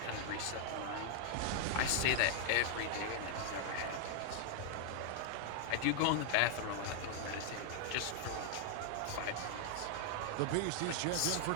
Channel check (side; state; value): both; different; correlation 0.00